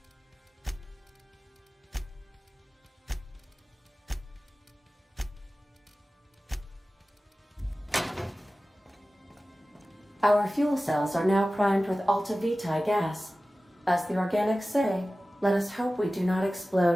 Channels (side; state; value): both; normal; correlation 0.96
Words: Our fuel cells are now primed with Alta Vitae gas. As the organics say, let us hope we do not